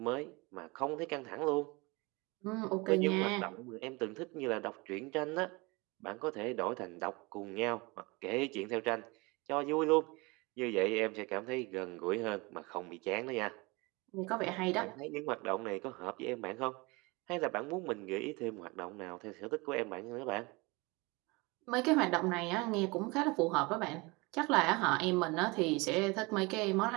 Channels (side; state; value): left; quieter; 25.7 dB